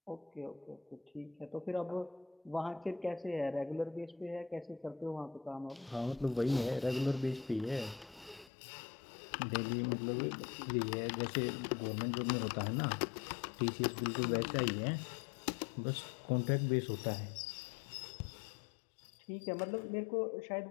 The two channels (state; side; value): drops out; right; at 8.5 s